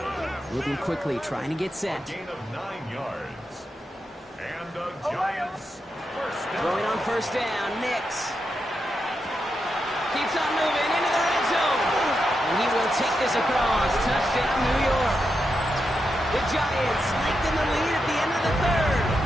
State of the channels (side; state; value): both; normal; correlation 0.86